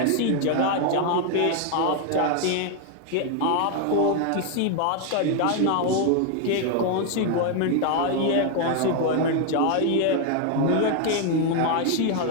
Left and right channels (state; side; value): different; both; correlation 0.01